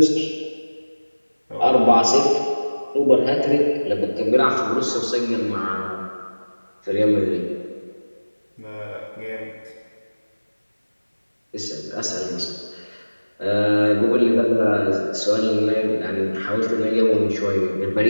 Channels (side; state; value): both; inverted; correlation -1.00